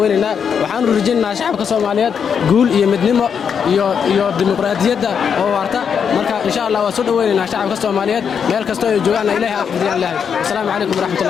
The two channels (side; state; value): right; quieter; 7.1 dB